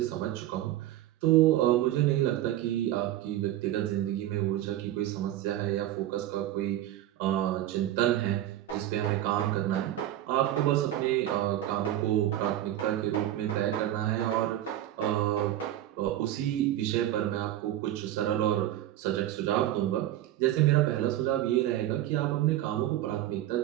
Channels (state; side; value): quieter; left; 13.3 dB